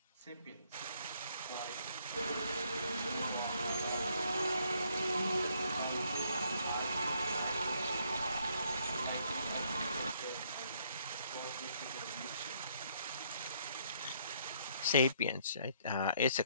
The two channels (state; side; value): inverted; both; correlation -0.68